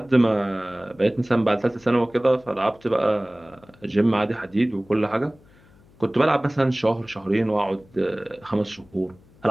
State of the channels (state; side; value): noise; left; hum, 28 dB below the sound